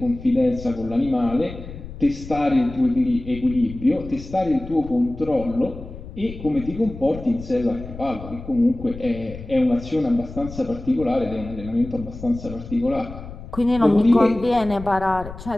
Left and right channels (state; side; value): noise; left; rumble, 13 dB below the sound